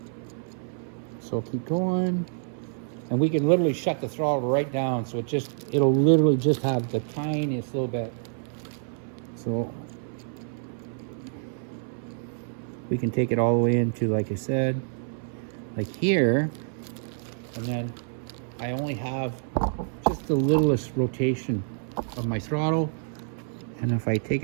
So keep going. And we can literally shut the throttle right down, so it'll literally just have the tiniest little bit. So we can take it all the way into, like I said, like here, and then I only have just the littlest rotation of my throttle. And if I take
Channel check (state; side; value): silent; left; 60 dB below the other